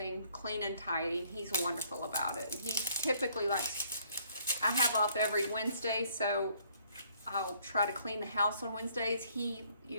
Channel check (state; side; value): inverted; both; correlation -0.64